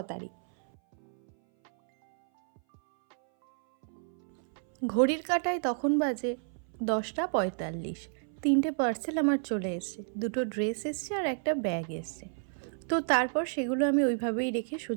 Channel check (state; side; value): silent; left; 57 dB below the other